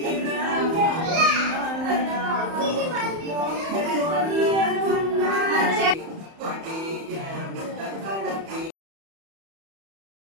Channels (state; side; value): late; left; 31 ms